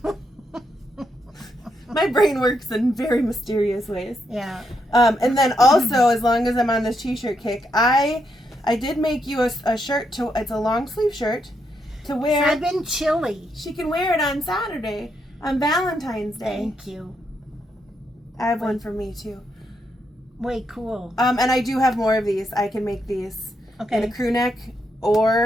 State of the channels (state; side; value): normal; both; correlation 0.79